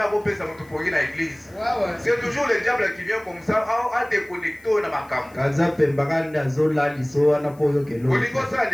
akopesa mtu pongi na église. C'est toujours le diable qui vient comme ça à déconnecter na makambo. Kaza pembakanda zola liso wana poyo kelo. Olingo sa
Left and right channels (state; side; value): noise; left; hiss, 28 dB below the sound